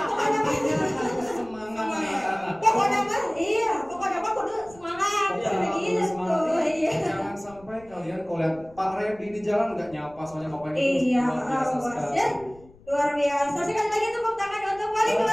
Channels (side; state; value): left; noise; rumble, 24 dB below the sound